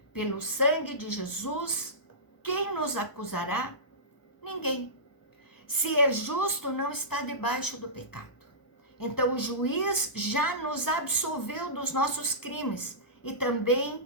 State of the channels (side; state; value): right; late; 1.0 ms